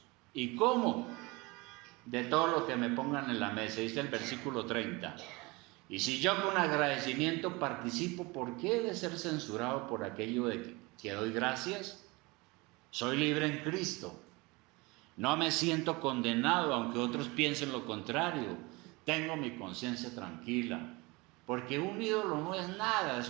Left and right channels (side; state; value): left; quieter; 24.6 dB